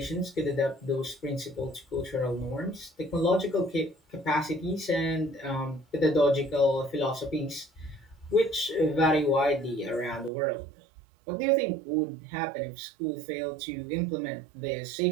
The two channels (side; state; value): left; drops out; at 10.3 s